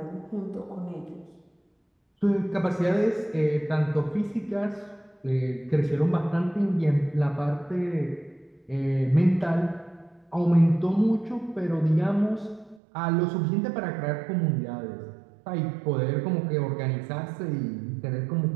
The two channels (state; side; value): drops out; left; at 12.8 s